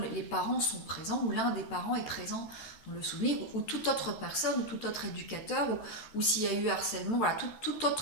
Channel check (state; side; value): late; right; 13 ms